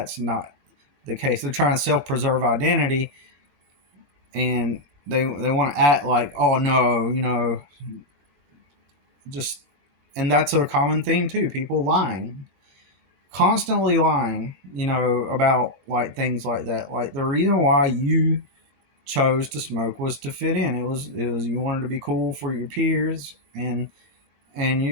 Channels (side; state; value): left; late; 21 ms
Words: not the case. They're trying to self preserve identity, and they want to act like, oh no, just, and that's a common theme too. People lying, constantly lying, about like things like that. Like the reason why you chose to smoke was to fit in. It was you wanted to be cool for your peers, and